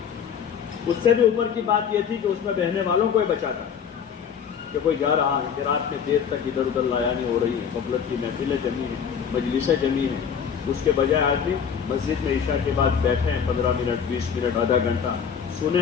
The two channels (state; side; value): quieter; right; 7.5 dB